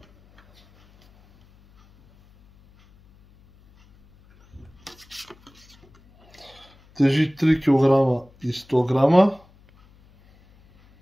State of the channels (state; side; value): noise; left; hum, 30 dB below the sound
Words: Тежи 3 кг и 100 грама.